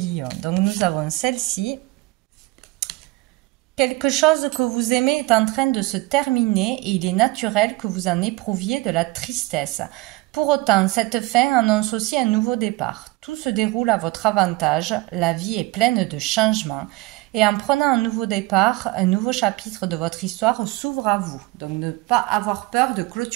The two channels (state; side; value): quieter; left; 20.1 dB